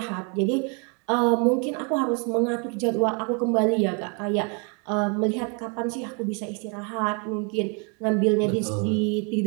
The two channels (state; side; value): quieter; left; 35.2 dB